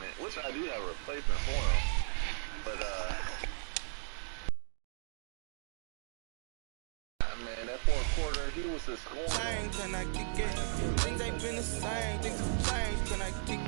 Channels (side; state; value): left; silent; digital silence